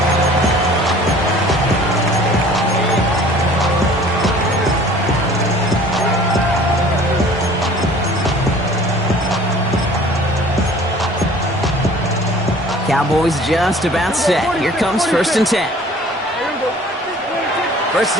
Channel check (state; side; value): normal; both; correlation 0.49